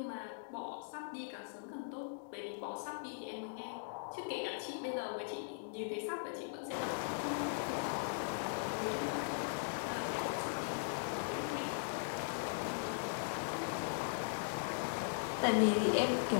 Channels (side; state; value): right; silent; digital silence